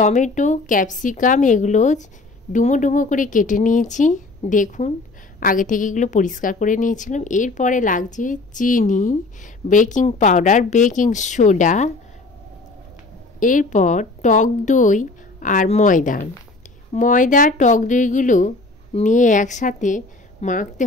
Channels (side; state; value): right; quieter; 3.3 dB